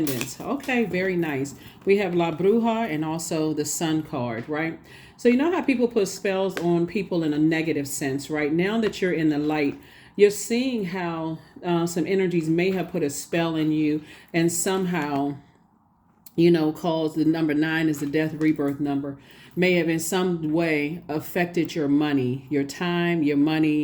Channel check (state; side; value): identical; both; correlation 1.00